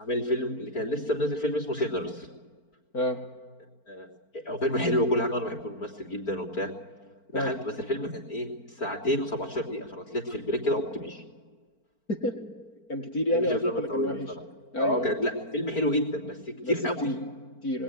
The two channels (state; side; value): late; right; 4.4 ms